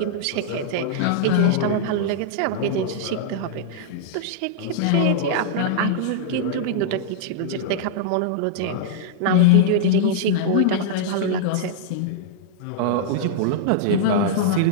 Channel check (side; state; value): both; different; correlation -0.02